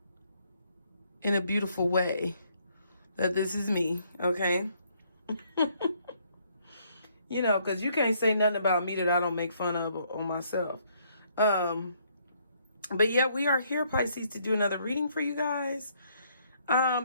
in a beautiful way that this is me. Okay. You know, because you can't say nothing about me that I don't make fun of on myself. But yeah, we are here, Pisces, to do another reading for you guys.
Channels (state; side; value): inverted; both; correlation -0.69